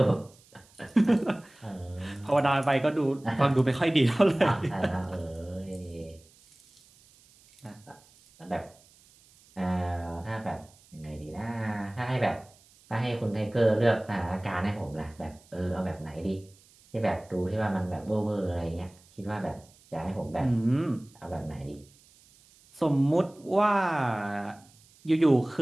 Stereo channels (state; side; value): noise; right; hiss, 28 dB below the sound